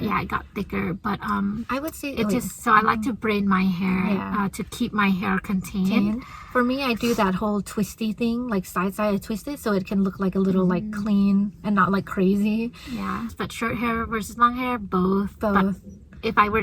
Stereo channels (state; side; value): identical; both; correlation 1.00